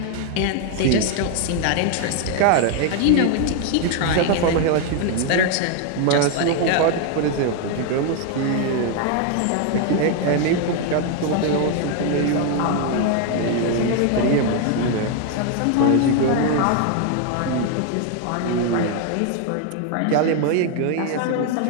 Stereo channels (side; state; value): both; different; correlation 0.01